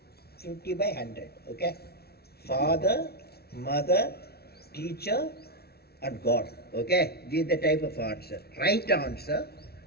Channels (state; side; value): late; right; 0.46 ms